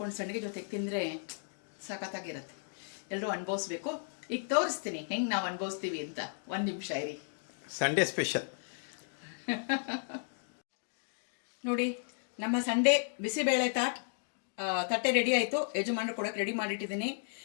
ಸಂಡಿಗೆ ಜೊತೆಗೆ ತಿಂದರೆ ಸಖತ್ತಾಗಿರುತ್ತೆ. ಎಲ್ಲರೂ ಅನುಭವಿಸ್ಬೇಕು. ಈಗ ತೋರಿಸ್ತೀನಿ ಹೆಂಗೆ ನಾವು ಅನುಭವಿಸ್ತೀವಿ ಅಂತ. 1 ನಿಮಿಷ ಇರಿ. ಸಂಡೇ ಸ್ಪೆಷಲ್ ನೋಡಿ, ನಮ್ಮ ಸಂಡೇ ಬಿಸಿಬೇಳೆ ತಟ್ಟೆ ರೆಡಿ ಆಯಿತು. ಯಜಮಾನರು ಕೊಡೋಕೆ ರೆಡಿ ಮಾಡಿಟ್ಟಿದ್ದೀನಿ.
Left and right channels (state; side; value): silent; right; digital silence